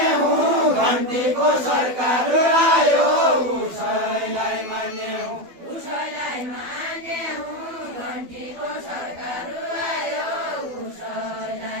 घन्टीको सरकार आयो उसैलाई मान्ने हौ उसैलाई मान्ने हौ घन्टीको सरकार आयो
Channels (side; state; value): left; late; 12 ms